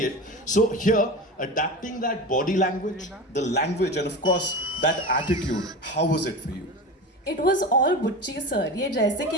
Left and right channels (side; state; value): both; normal; correlation 0.28